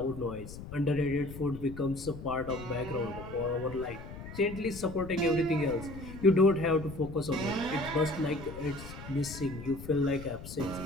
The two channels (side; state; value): left; noise; rumble, 12 dB below the sound